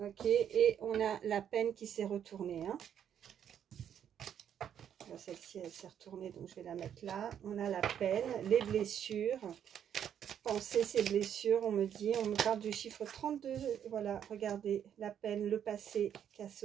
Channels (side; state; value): left; quieter; 9.2 dB